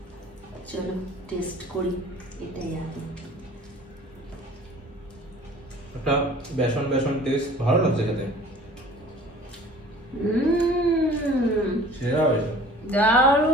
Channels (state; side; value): normal; both; correlation 0.48